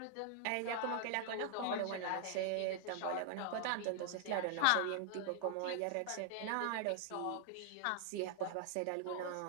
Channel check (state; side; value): different; both; correlation 0.00